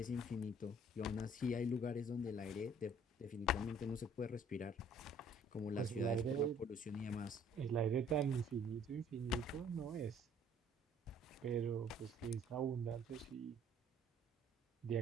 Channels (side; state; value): both; normal; correlation 0.58